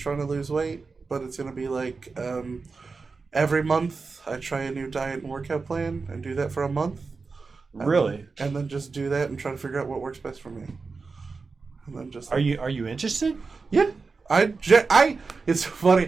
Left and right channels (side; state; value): left; quieter; 4.4 dB